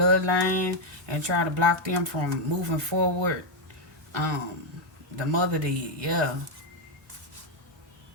and try to block them from moving forward. Um, the mother did, yeah.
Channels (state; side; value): normal; both; correlation 0.02